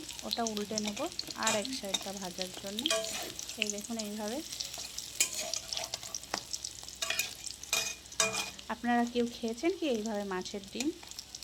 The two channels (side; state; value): both; identical; correlation 1.00